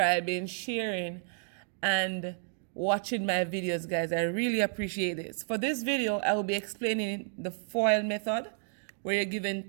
sharing, and watching my videos, guys. I really appreciate this. For this video, I will be explaining the FOIL method, where you're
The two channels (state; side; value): silent; left; 57 dB below the other